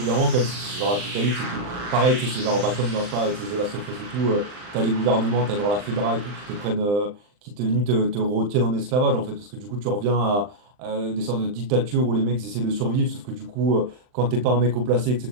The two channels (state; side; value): late; left; 39 ms